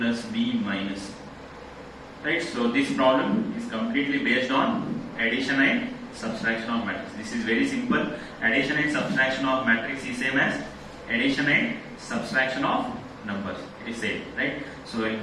B minus C. Right? So this problem is completely based on addition and subtraction of matrix. This is very simple. Addition and subtraction of matrix is same as addition and subtraction of numbers. It is same, right? So we'll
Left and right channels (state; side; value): identical; both; correlation 1.00